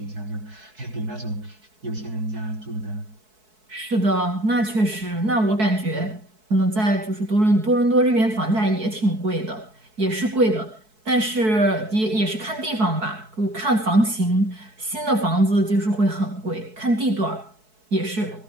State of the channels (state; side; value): late; left; 4.6 ms